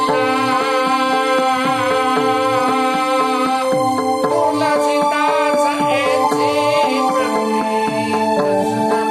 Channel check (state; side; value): identical; both; correlation 1.00